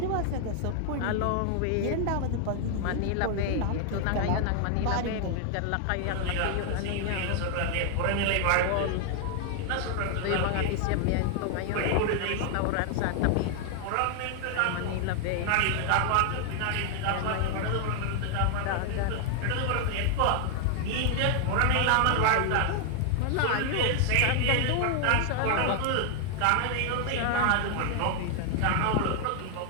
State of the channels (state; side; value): different; both; correlation 0.00